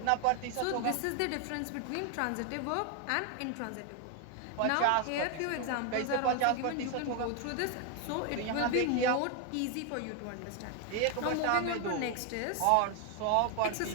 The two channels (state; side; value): different; both; correlation 0.01